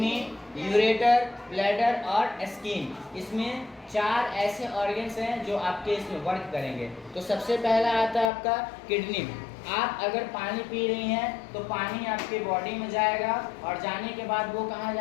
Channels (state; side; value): drops out; right; at 8.3 s